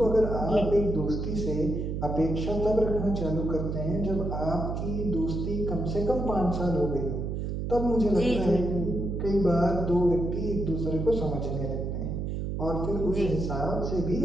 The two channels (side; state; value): right; noise; hum, 3 dB below the sound